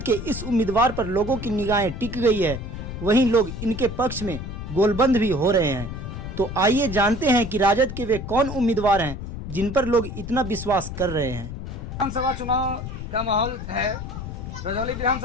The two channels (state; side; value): noise; left; rumble, 8 dB below the sound